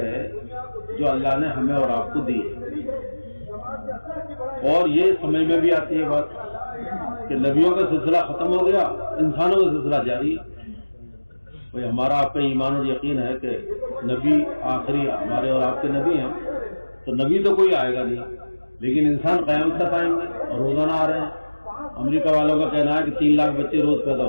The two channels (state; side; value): inverted; both; correlation -1.00